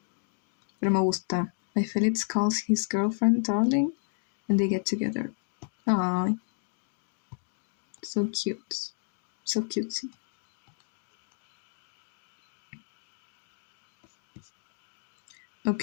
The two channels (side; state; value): right; silent; digital silence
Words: Pero me gusta. My Felix calls his girlfriend darling and they get together. Aww. So cute. So cutesy.